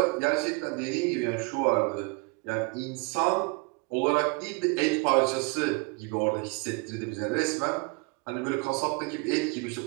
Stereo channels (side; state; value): left; quieter; 29.5 dB